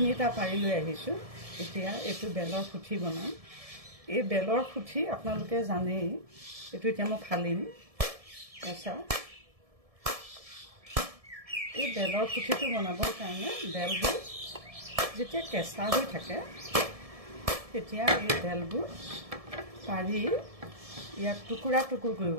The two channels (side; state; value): left; late; 1.7 ms